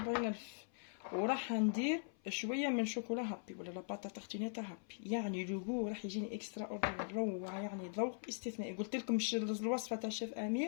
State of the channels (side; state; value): right; silent; 50 dB below the other